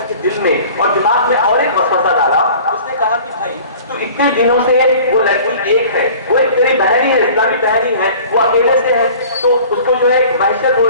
کے دل میں اور دماغ میں اور ایک وسوسہ ڈالا۔ اس نے کہا کہ بھائی تو اتنے دنوں سے وہ لڑکی ایک ہے، وہ ایک تیری بہن ہی ہے، اسلامی بہن ہی ہے، وہ اکیلے سے ہے، تو اس کو جو ہے وحشت ہو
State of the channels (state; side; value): inverted; both; correlation -0.45